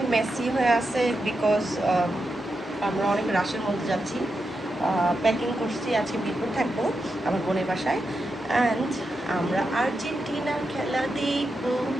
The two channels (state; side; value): normal; both; correlation 0.87